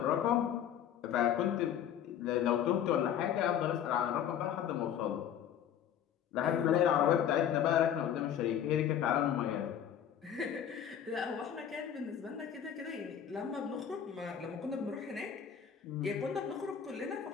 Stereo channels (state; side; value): quieter; right; 9.4 dB